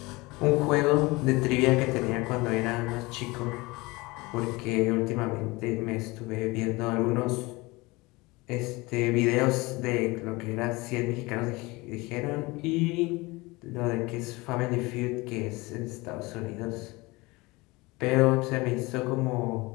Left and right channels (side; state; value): right; quieter; 23.2 dB